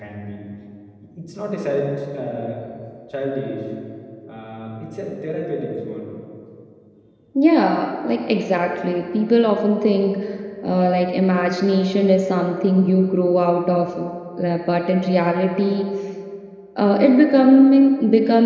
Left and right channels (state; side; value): identical; both; correlation 1.00